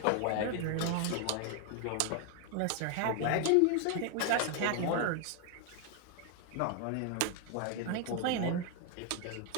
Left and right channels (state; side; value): different; both; correlation 0.00